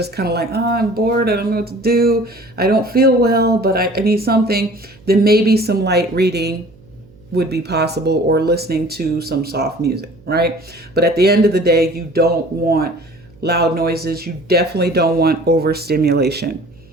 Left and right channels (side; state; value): right; noise; hum, 26 dB below the sound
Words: kind of like, oh, I'm bored. I don't know what to do. I don't feel well, but I need something. Then maybe some light reading would be possible, or listening to some soft music, right? But at the end of the day, you don't want loud noises. You definitely don't want overstimulation.